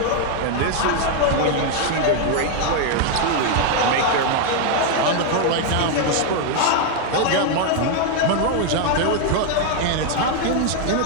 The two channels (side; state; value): both; different; correlation 0.00